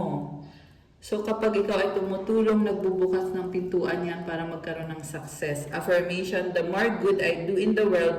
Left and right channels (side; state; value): both; identical; correlation 1.00